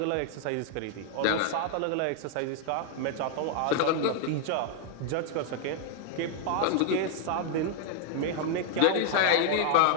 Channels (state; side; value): different; both; correlation 0.00